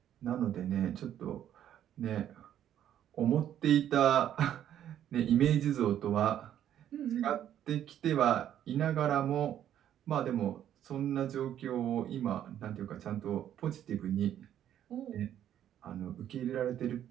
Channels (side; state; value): left; quieter; 10.7 dB